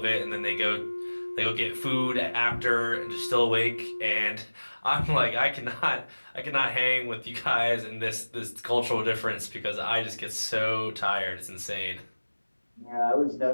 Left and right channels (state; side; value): inverted; both; correlation -1.00